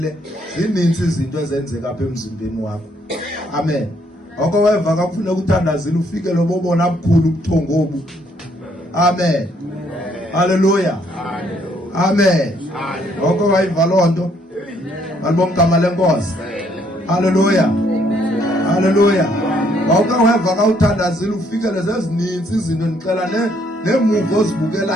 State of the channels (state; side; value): normal; both; correlation 0.68